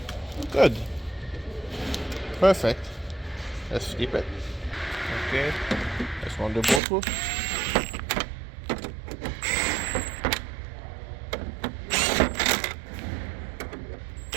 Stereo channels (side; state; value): left; drops out; at 6.8 s